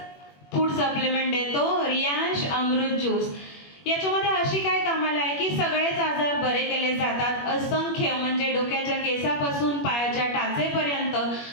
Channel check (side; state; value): right; late; 21 ms